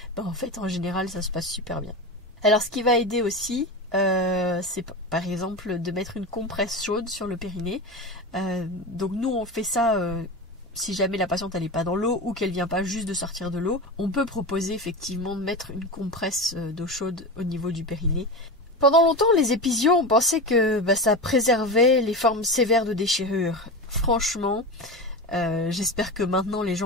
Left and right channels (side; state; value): both; normal; correlation 0.23